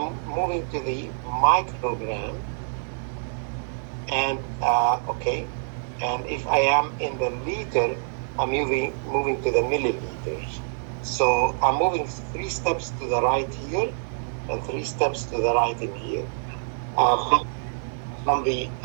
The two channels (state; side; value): silent; left; digital silence